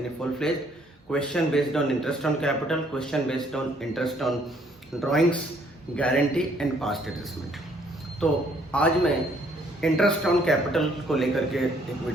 full fledged, question based on interest on capital, question based on interest on drawings, guarantee and past adjustment. तो आज मैं इंटरेस्ट ऑन कैपिटल को लेकर के एक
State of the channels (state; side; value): normal; both; correlation 0.65